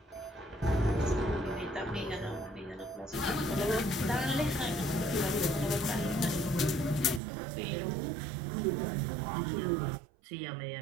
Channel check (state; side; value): drops out; left; at 7.2 s